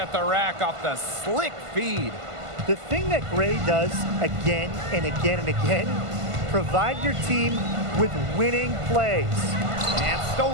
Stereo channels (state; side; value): late; left; 1.5 ms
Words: the rack off the slick feed. The thing that Gray does again and again and again, provide your team with winning plays. And